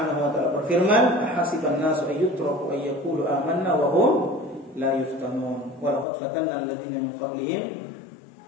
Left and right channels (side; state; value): right; drops out; at 6.1 s